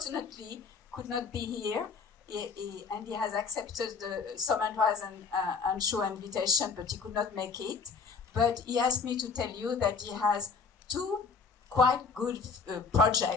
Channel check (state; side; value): quieter; right; 5.0 dB